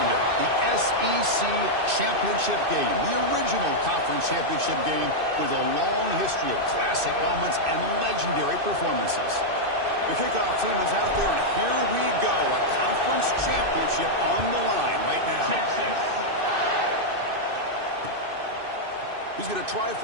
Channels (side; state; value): left; late; 2.6 ms